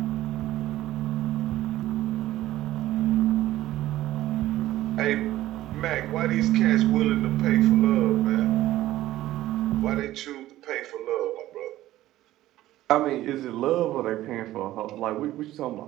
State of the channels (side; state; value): left; quieter; 15.0 dB